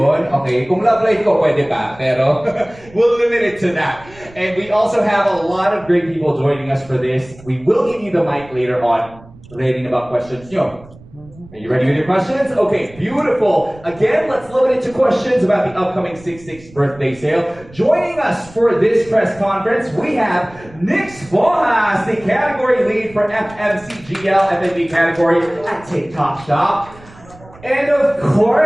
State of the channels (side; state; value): right; noise; rumble, 22 dB below the sound